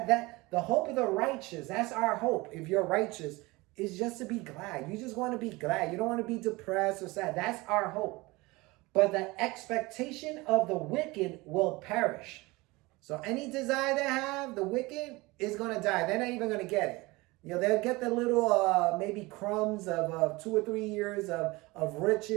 the hope of the righteous, that's our hope. If you're righteous, is just to be glad. You just want to be glad. You don't want to be depressed or sad. That's our hope. But the expectation of the wicked will perish. So any desire they have, the wicked is going to die. They're not even going to get it. They'll get the little maybe crumbs of 2 or 3 years of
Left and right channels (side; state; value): left; quieter; 22.6 dB